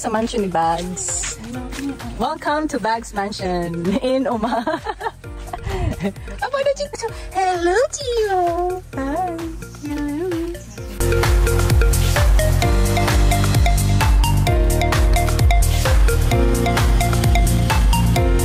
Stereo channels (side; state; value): both; identical; correlation 1.00